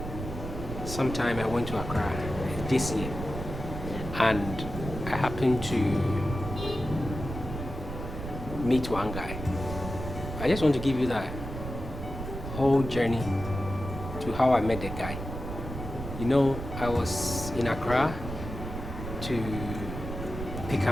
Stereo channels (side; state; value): right; noise; rumble, 7 dB below the sound